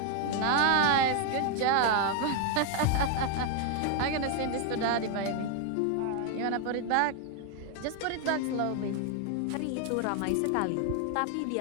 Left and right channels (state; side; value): different; both; correlation 0.01